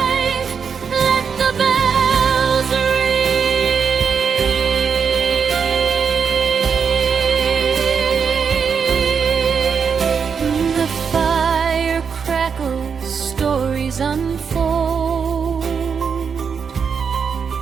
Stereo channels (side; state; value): left; quieter; 6.3 dB